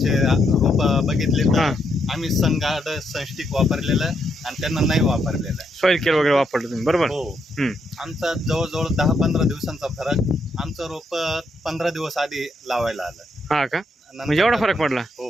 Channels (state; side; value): normal; both; correlation 0.78